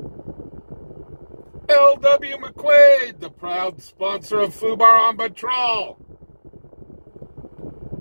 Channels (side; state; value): both; inverted; correlation -1.00